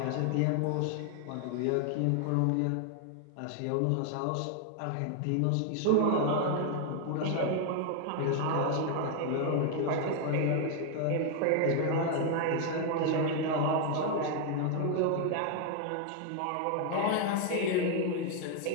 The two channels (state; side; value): different; both; correlation 0.00